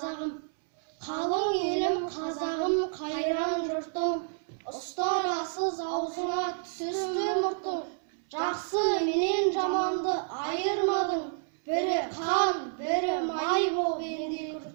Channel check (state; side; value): silent; left; 58 dB below the other